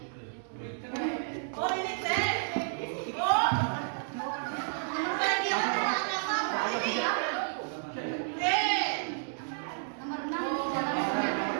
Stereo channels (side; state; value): left; silent; digital silence